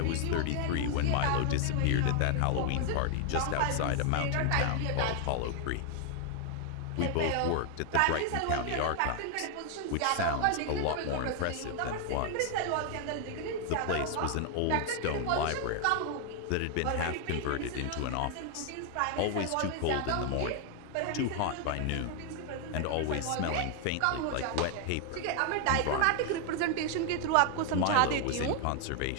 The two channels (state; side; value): different; both; correlation 0.00